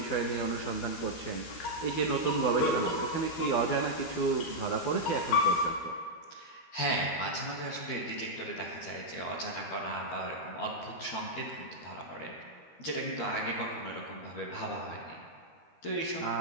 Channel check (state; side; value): late; right; 13 ms